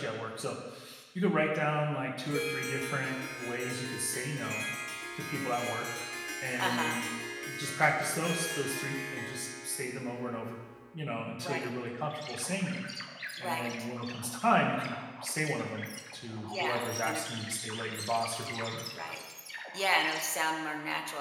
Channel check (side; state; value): both; identical; correlation 1.00